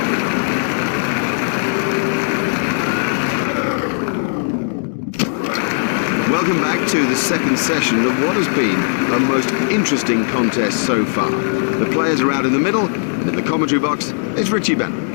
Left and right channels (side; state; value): right; silent; digital silence